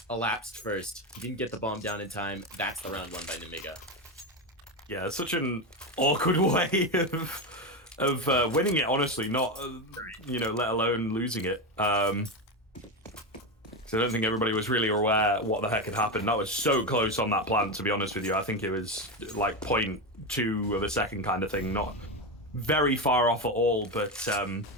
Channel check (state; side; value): normal; both; correlation 0.14